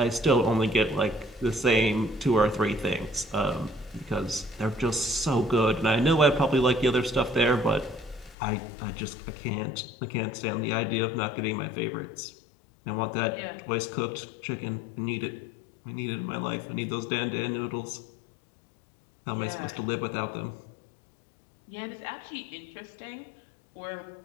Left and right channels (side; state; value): right; drops out; at 8.3 s